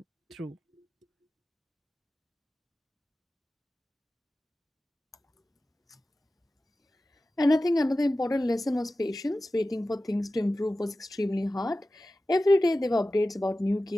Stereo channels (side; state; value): both; normal; correlation 0.95